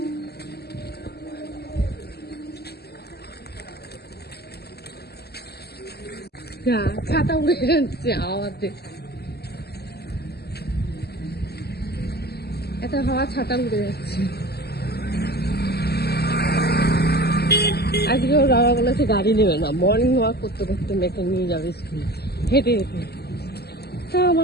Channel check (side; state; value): right; late; 0.47 ms